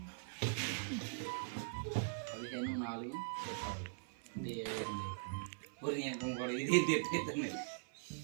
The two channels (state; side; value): silent; left; 50 dB below the other